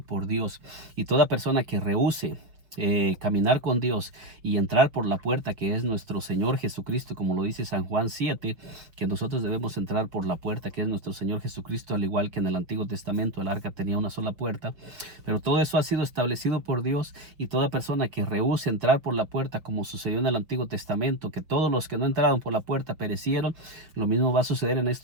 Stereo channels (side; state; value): left; late; 5.6 ms